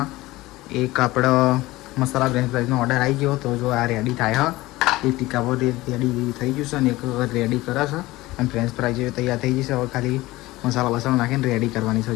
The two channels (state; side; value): quieter; right; 19.0 dB